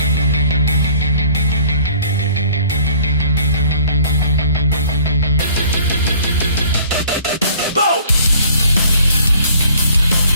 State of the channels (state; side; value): inverted; both; correlation -0.53